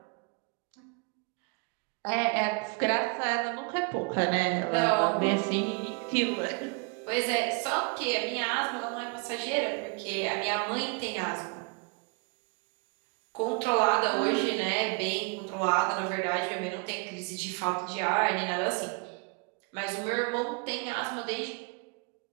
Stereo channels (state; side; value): quieter; left; 33.3 dB